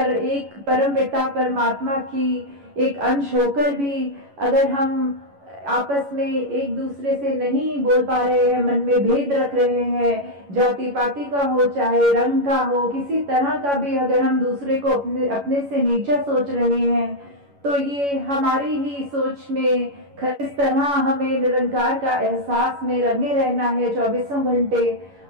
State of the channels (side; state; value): left; late; 11 ms